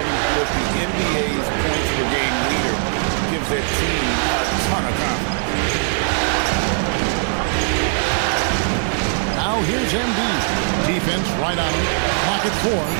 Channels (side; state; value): left; silent; 58 dB below the other